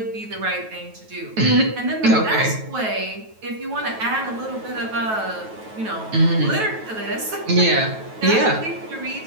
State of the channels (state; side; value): late; left; 9.2 ms